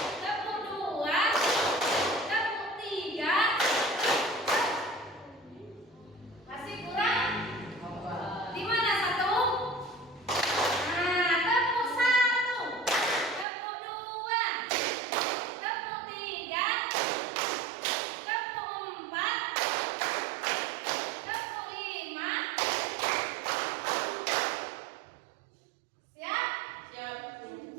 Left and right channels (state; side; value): drops out; left; at 13.5 s